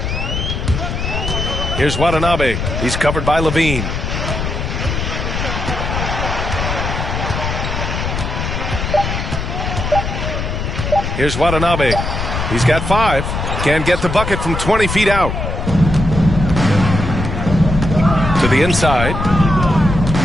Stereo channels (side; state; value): left; noise; rumble, 3 dB below the sound